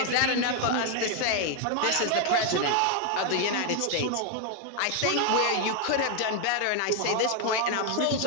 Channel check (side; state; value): both; different; correlation 0.01